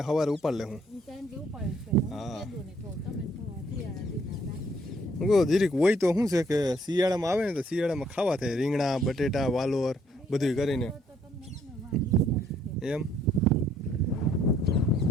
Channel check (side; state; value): both; normal; correlation 0.66